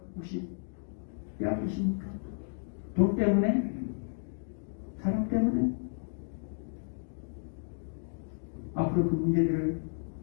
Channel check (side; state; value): right; silent; digital silence